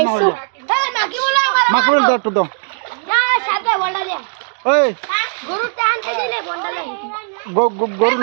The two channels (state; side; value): silent; left; 58 dB below the other